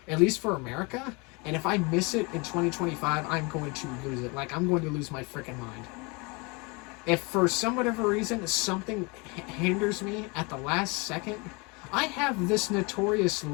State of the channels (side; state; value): right; quieter; 29.0 dB